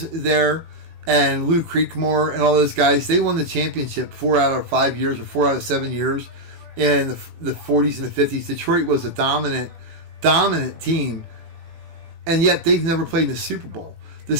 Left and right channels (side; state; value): left; late; 18 ms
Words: there and Lou Creekmore and all those guys, they won the championship 4 out of 5 years or 4 out of 7 years in the 40s and the 50s. Detroit was a dominant team, and yet they've never played in the Super Bowl. The